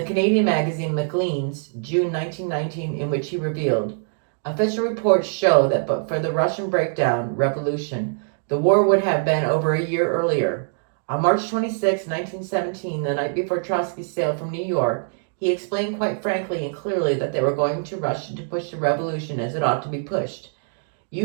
Canadian magazine Maclean's, June 1919, in which he revealed, "Official reports show that but for the Russian revolution, the war would have been over a year earlier. On March 26, 1917, the night before Trotsky sailed from New York, he explained quite frankly and clearly that they were going to Russia to push the revolution as it ought to be pushed.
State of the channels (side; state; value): left; silent; digital silence